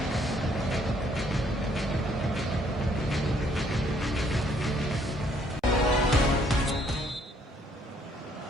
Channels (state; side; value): normal; both; correlation 0.66